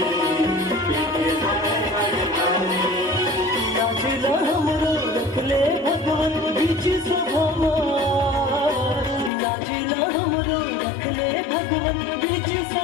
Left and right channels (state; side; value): drops out; right; at 9.3 s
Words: नाचला हमरो रख ले भगवान बीच सभा मार, नाचला हमरो रख ले भगवान बीच